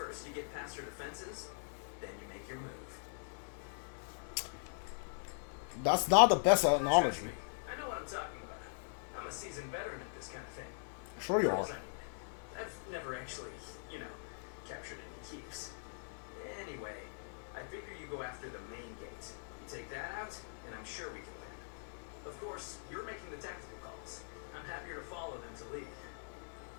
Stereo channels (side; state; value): right; silent; digital silence